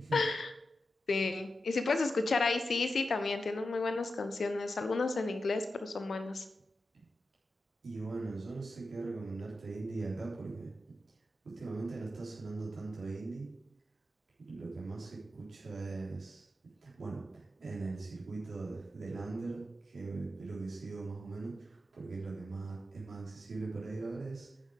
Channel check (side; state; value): both; normal; correlation 0.90